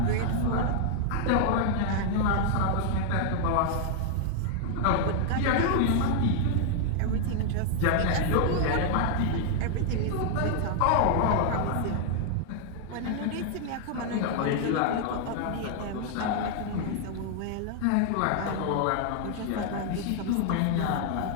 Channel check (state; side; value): different; both; correlation 0.00